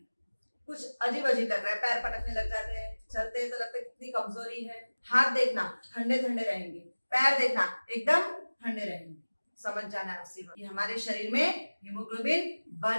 कुछ अजीब अजीब लग रहा है, पैर पटकने लग जाते हैं, चलते हैं तो लगता है कितनी कमजोरी है। हाथ देखना ठंडे ठंडे रहेंगे, पैर देखना एकदम ठंडे रहेंगे। समझ जाना है उसी वक्त कि हमारे शरीर में हीमोग्लोबिन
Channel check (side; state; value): both; inverted; correlation -1.00